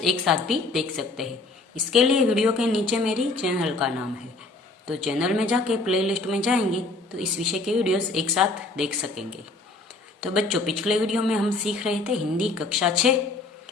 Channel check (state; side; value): quieter; right; 3.2 dB